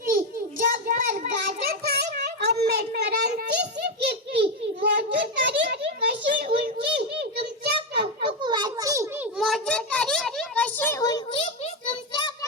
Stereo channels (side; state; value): both; normal; correlation 0.09